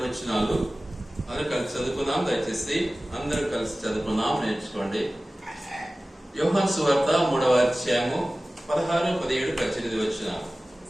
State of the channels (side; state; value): both; normal; correlation 0.97